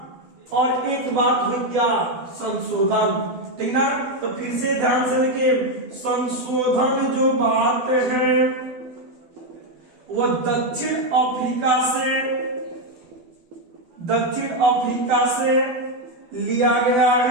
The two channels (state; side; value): late; left; 12 ms